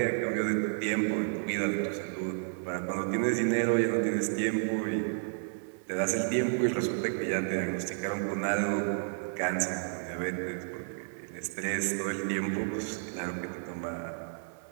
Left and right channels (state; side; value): silent; left; 57 dB below the other